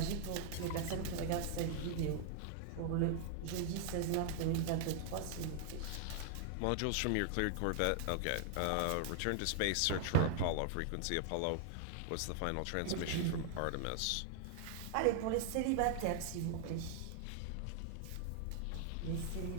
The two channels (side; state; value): both; different; correlation 0.00